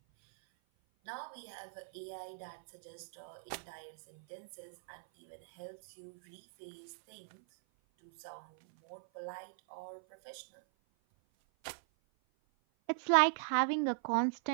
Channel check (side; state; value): left; silent; 51 dB below the other